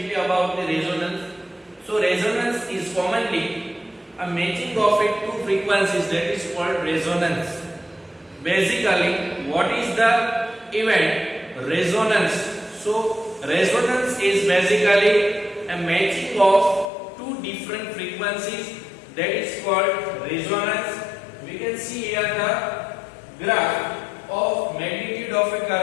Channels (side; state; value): right; drops out; at 16.9 s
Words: about the resonance. So resonance is commonly a matching of two frequencies, that is called resonance. Basically, what is the event? Resonance. So resonance is basically a matching of two different frequencies, that is called resonance. We can see here the graph of magnitude of a